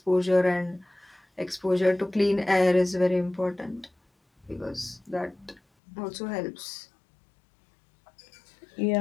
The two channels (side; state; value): right; drops out; at 5.6 s